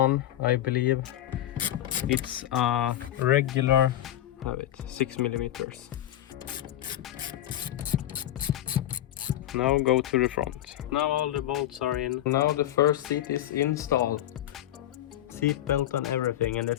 I believe. It's a regular, have it, 6 millimeters. Now go to the front. Now all the bolts are in. Now the first seat is installed. Seat belt and everything, and the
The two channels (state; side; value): quieter; right; 12.9 dB